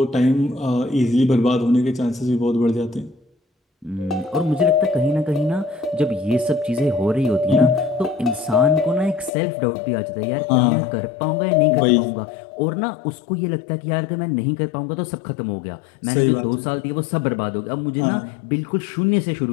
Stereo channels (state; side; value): drops out; right; at 9.3 s